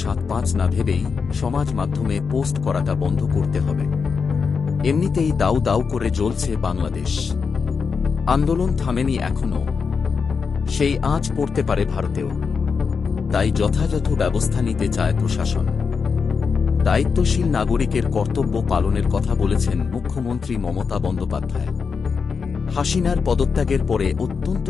৭-৫ না ভেবেই সমাজ মাধ্যমে পোস্ট করাটা বন্ধ করতে হবে। এমনিতেই দাউ দাউ করে জ্বলছে বাংলাদেশ, আন্দোলন থামেনি এখনো, সেই আঁচ পড়তে পারে ভারতেও। তাই যথাযথ ব্যবস্থা নিতে চায় প্রশাসন। দায়িত্বশীল নাগরিকের কর্তব্য পালনের কথা বলেছেন মুখ্যমন্ত্রী মমতা বন্দ্যোপাধ্যায়। হাসিনার পদত্যাগের পরে অত্যন্ত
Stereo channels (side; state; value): right; quieter; 5.5 dB